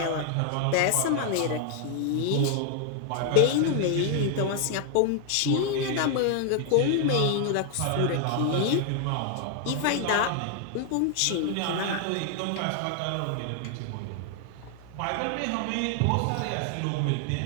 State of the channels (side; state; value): both; different; correlation 0.00